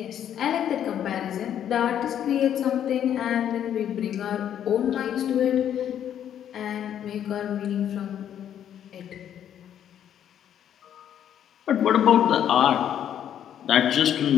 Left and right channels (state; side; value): quieter; right; 9.9 dB